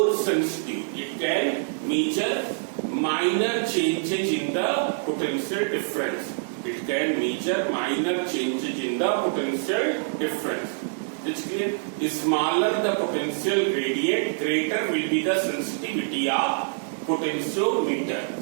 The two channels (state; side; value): silent; left; 61 dB below the other